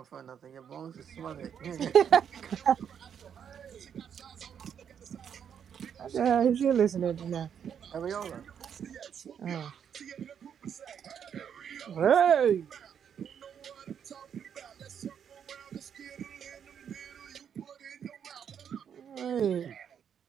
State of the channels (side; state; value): left; quieter; 8.1 dB